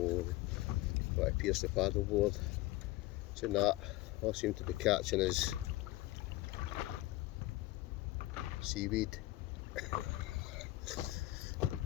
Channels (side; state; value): right; quieter; 17.9 dB